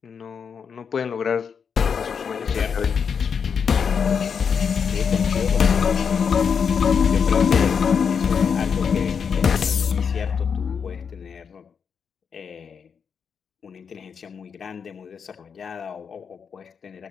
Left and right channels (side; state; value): right; quieter; 6.5 dB